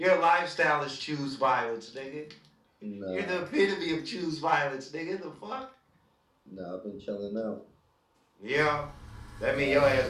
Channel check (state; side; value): identical; both; correlation 1.00